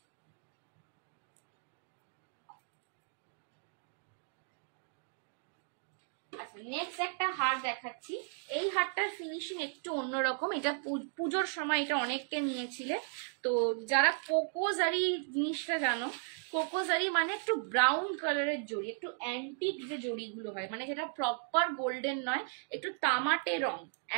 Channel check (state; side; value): silent; left; 54 dB below the other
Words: আচ্ছা নেক্সট একটা হার দেখাচ্ছি। এই হারটার ফিনিশিং একটু অন্যরকম। এটা পুজোর সময় এটা অনেককে নিয়েছিলে। তো যারা কোকোজারি জিনিসটা জানো, কোকোজারি মানে একটু ব্রাউন কালারের জড়ি, একটু অ্যান্টিক যে জড়িগুলো হয়, মানে যেটা প্রপার গোল্ডেন নয়, একটু তামাটে রং,